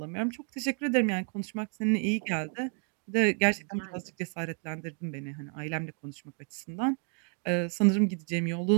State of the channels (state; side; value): quieter; left; 38.5 dB